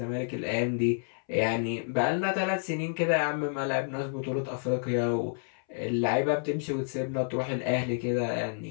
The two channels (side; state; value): right; silent; 58 dB below the other